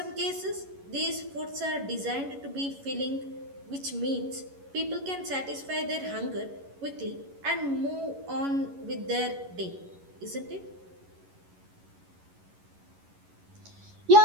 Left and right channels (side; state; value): left; late; 11 ms